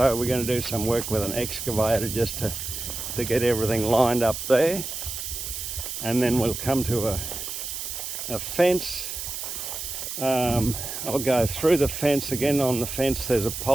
we're going to do some work with an excavator just to get everything lined up there, and then we'll come to a fence. I'll go through the fence again. On the fence there's a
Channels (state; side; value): noise; right; hiss, 6 dB below the sound